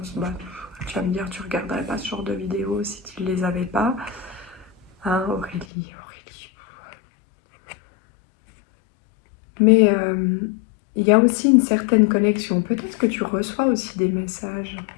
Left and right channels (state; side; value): drops out; right; at 5.7 s